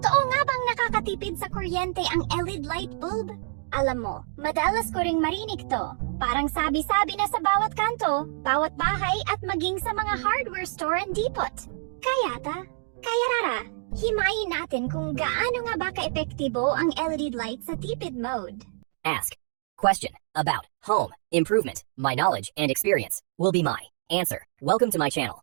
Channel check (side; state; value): left; silent; digital silence